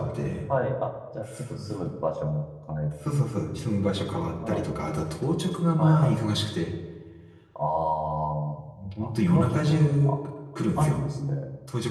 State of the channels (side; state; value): both; identical; correlation 1.00